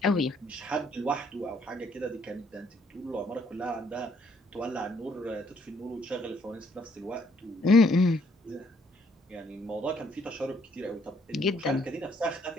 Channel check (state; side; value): normal; both; correlation 0.67